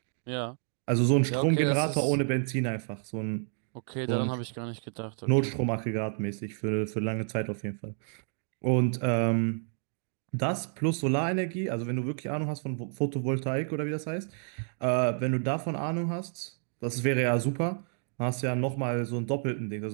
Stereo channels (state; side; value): silent; left; 56 dB below the other